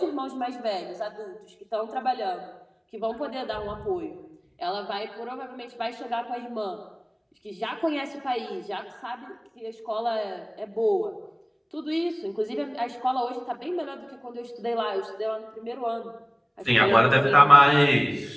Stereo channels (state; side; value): identical; both; correlation 1.00